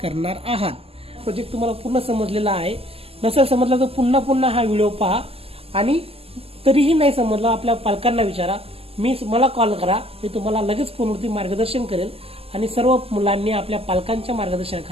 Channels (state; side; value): late; left; 0.28 ms